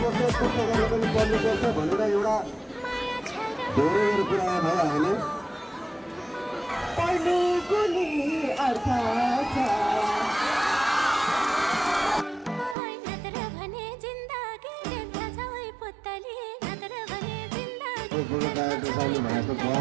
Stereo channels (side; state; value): left; drops out; at 12.8 s